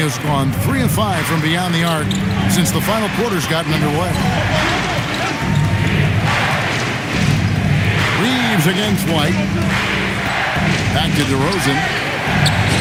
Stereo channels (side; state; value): both; identical; correlation 1.00